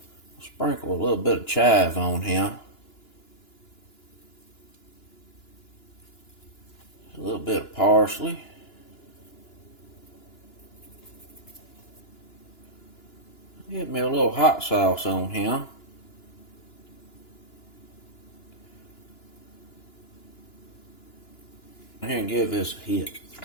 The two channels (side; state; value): right; late; 2.9 ms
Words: I'll sprinkle a little bit of chive on here. A little bit of parsley. Get me a little hot sauce on here. Here and give this a hit.